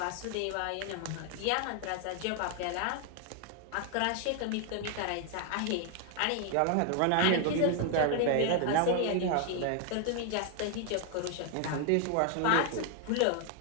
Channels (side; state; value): both; different; correlation 0.00